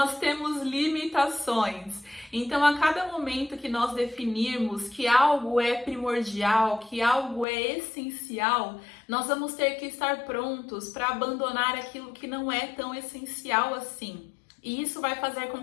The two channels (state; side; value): drops out; right; at 7.5 s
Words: temos limitações. Então, a cada momento que nós definirmos que algo é primordial, que algo é essencial, nós vamos ter que estar prontos para abandonar aquilo que não é tão essencial assim. E isso vai fazer com